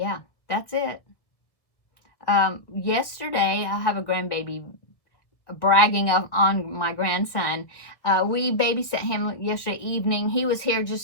that's it. Yesterday, I have a grandbaby bragging on my grandson. We babysat him yesterday evening. He was here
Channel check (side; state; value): right; late; 1.6 ms